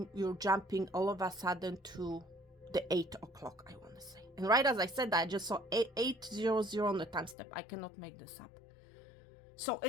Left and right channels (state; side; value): drops out; right; at 7.4 s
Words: you're jumping all of a sudden to the 8 o'clock, I want to say. And right as I said that, I just saw 800 on the time step. I cannot make this up. So